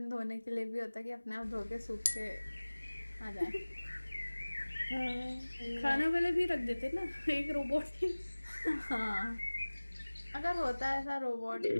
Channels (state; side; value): inverted; both; correlation -1.00